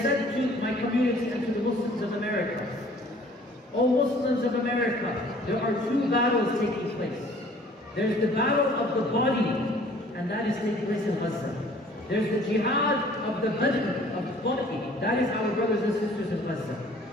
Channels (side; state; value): both; normal; correlation 0.53